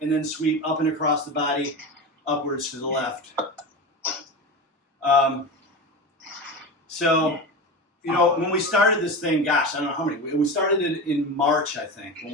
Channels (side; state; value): both; normal; correlation 0.25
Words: and then sweep up and across the body, upwards to the left. So, you know, when we started this thing, gosh, I don't know how many. We started it in March, I think, when